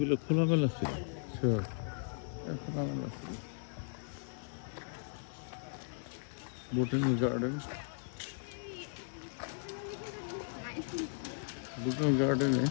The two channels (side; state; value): right; silent; digital silence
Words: খোলামেলা ছিল, খোলামেলা ছিল। বোটানিক্যাল গার্ডেনে